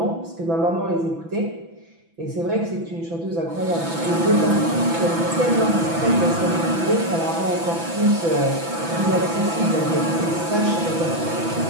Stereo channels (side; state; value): left; late; 6.0 ms